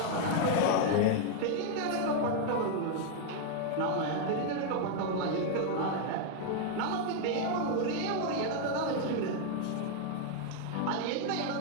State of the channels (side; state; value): both; different; correlation 0.00